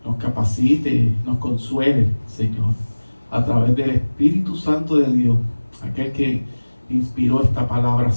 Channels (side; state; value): both; inverted; correlation -1.00